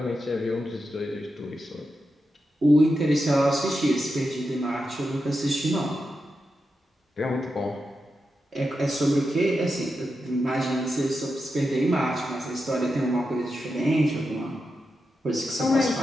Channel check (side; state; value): both; normal; correlation 0.88